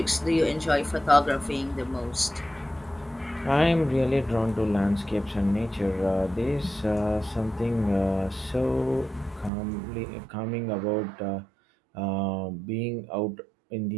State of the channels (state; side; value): drops out; left; at 9.5 s